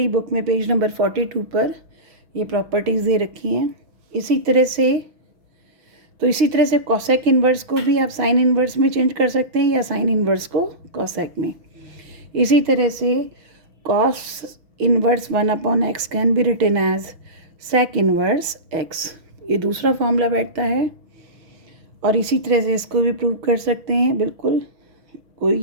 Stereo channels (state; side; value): late; left; 6.2 ms